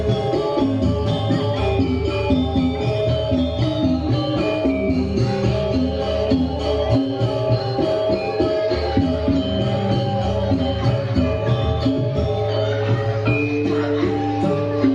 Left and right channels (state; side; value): identical; both; correlation 1.00